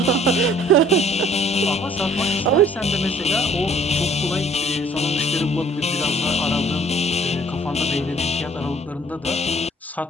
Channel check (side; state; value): both; normal; correlation 0.56